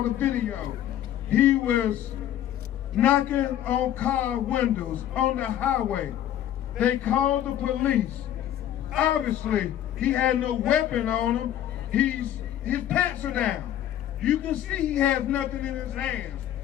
the video. He was knocking on car windows on the highway. They called the police. Obviously, he had no weapon on him. His pants are down. You can see he has nothing in his hands.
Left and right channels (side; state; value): right; quieter; 11.6 dB